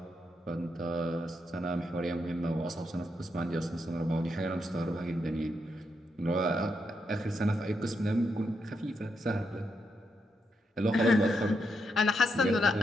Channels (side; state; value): both; normal; correlation 0.82